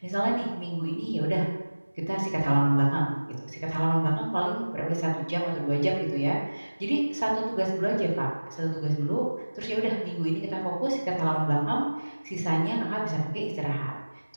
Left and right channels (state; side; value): inverted; both; correlation -1.00